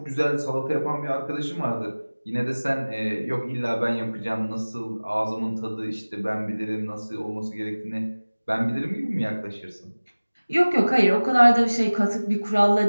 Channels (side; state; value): both; inverted; correlation -1.00